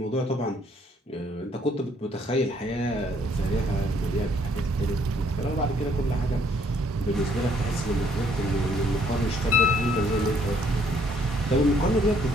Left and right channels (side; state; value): both; normal; correlation 0.65